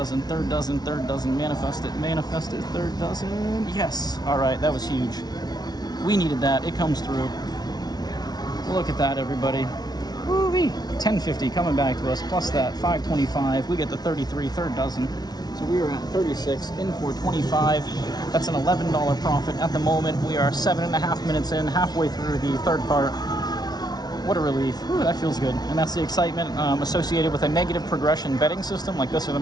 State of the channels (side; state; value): right; late; 0.19 ms